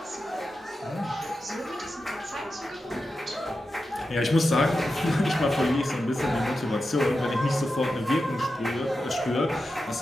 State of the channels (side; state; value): both; normal; correlation 0.90